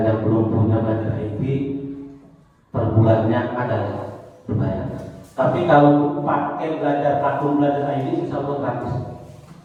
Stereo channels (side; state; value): both; identical; correlation 1.00